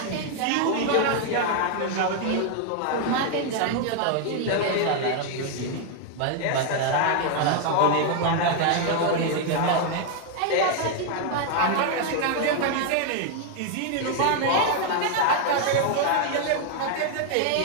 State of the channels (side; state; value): both; different; correlation 0.00